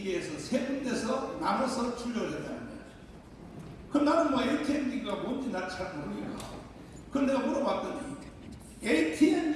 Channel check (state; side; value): identical; both; correlation 1.00